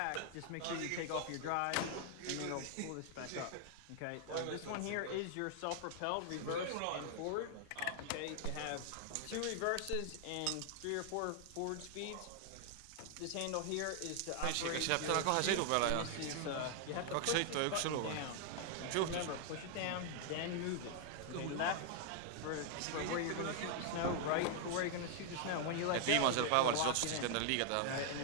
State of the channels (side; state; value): both; different; correlation 0.00